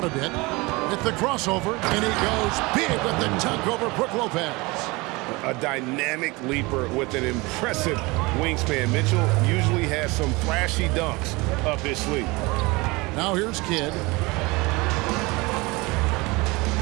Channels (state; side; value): quieter; left; 24.2 dB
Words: a bit with the crossover, and he goes big with the dunk over Brook Lopez. A dynamic leaper with an impressive wingspan. Mitchell usually has some flashy dunks up his sleeve. Now here's Kidd.